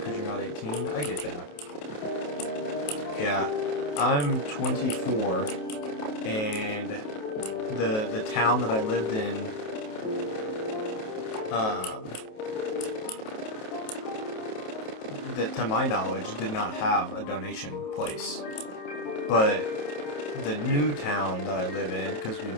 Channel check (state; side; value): late; right; 28 ms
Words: you're not 18. I get that. Yeah, I'm 24, and the town that I lived in, that to my knowledge did not have a donation place. But the new town that I live in, because we